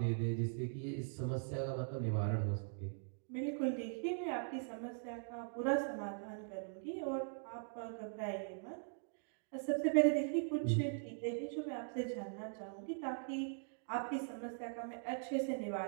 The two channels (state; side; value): silent; left; digital silence